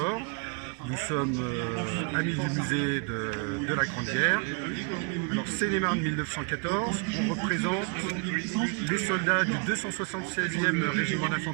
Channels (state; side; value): quieter; left; 35.6 dB